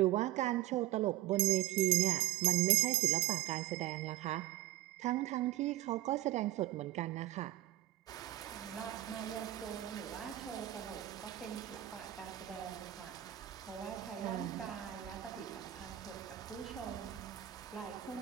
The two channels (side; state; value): left; quieter; 15.1 dB